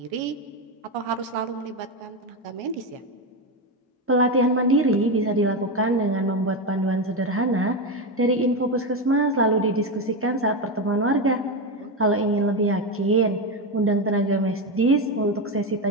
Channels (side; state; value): both; normal; correlation 0.12